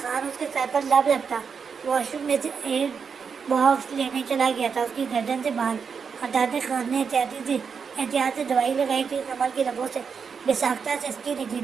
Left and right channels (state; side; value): quieter; left; 6.1 dB